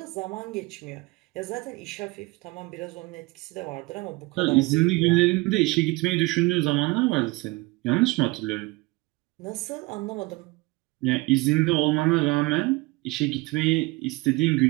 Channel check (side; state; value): left; quieter; 23.1 dB